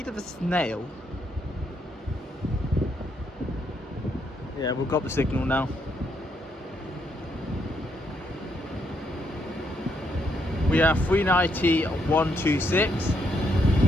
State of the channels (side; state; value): both; normal; correlation 0.75